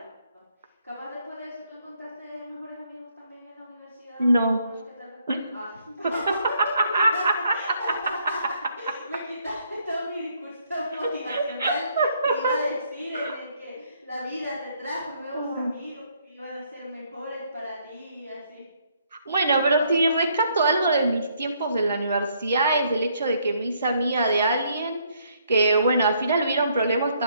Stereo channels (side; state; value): both; inverted; correlation -0.69